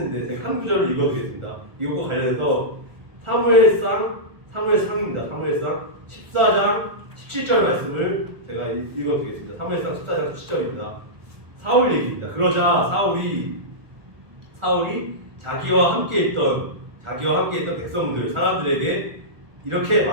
제가 한 구절을 읽어드리겠습니다. 이것과 관련해서 사무엘상입니다. 사무엘상 14장 17절 말씀을 제가 읽어드리겠습니다. 사무엘상 14장 17절입니다. 사울 얘기입니다. 그러자 사울이 자기와 함께 있던 백성들 사람들에게 이렇게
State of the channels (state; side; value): late; left; 1.4 ms